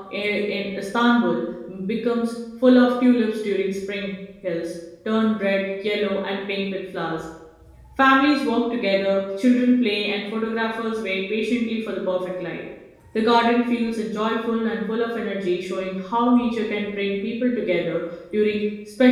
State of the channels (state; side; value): identical; both; correlation 1.00